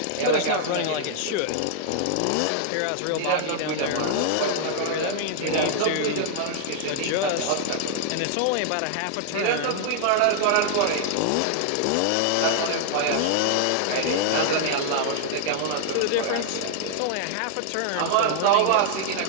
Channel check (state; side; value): different; both; correlation -0.01